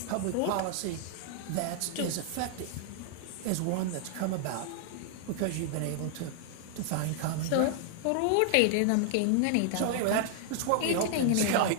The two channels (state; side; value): different; both; correlation 0.00